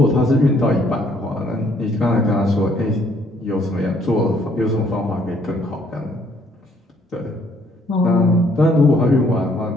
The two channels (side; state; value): both; normal; correlation 0.66